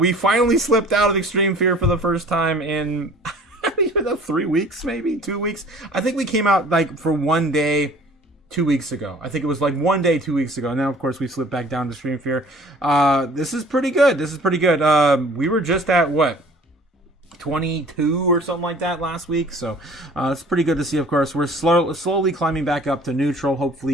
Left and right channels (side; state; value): both; normal; correlation 0.49